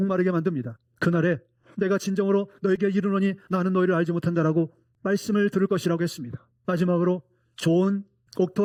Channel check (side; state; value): both; identical; correlation 1.00